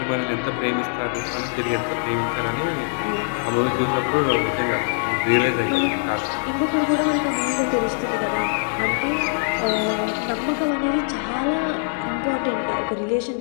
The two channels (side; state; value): right; silent; 64 dB below the other